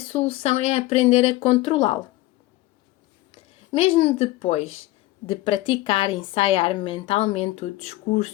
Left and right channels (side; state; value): right; quieter; 18.0 dB